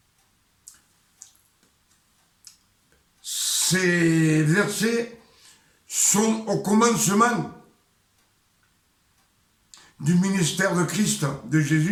Ces versets sont au commencement du ministère de Christ, de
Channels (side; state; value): both; identical; correlation 1.00